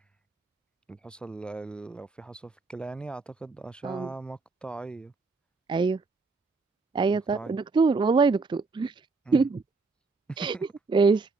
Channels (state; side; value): quieter; left; 4.1 dB